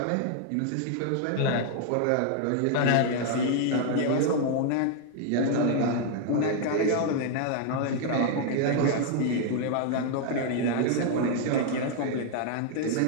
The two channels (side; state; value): both; different; correlation 0.00